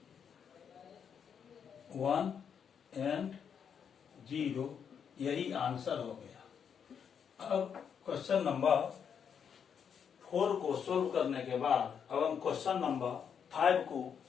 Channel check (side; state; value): right; quieter; 7.4 dB